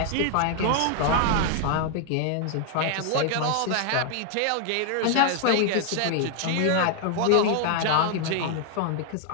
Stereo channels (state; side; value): different; both; correlation 0.00